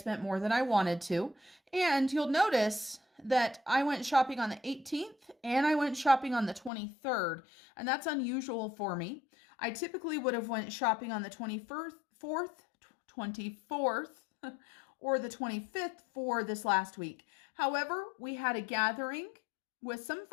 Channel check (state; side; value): drops out; right; at 6.7 s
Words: more than I wanted to. And you'll notice that I went shopping on the 18th and I went shopping on the 23rd. And that's unusual for me. I typically would have went shopping on the 24th, or the 25th for this last week. However, we had a gathering with some